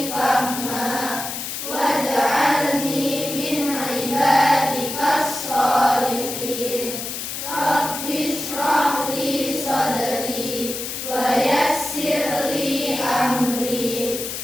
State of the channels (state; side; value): noise; left; hiss, 6 dB below the sound